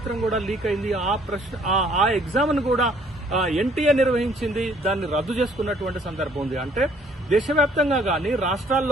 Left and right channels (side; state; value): both; normal; correlation 0.61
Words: కూడా లీక్ అయింది. ఆ ఎగ్జామ్ ను కూడా ఎన్టీఏ నిర్వహించింది, దాన్ని రద్దు చేసుకున్నటువంటి సందర్భం ఉంది. అంటే దేశవ్యాప్తంగా గాని